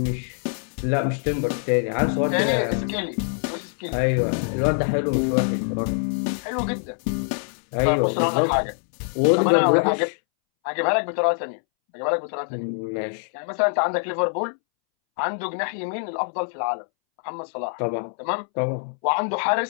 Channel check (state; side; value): silent; right; 63 dB below the other